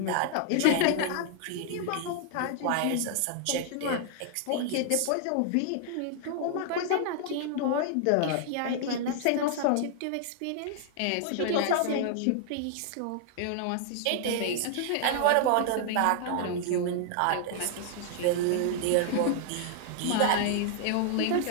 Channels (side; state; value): both; different; correlation 0.00